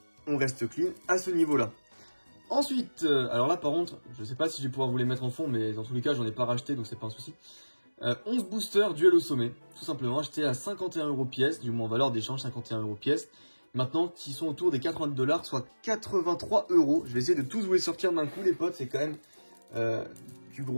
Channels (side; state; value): both; inverted; correlation -1.00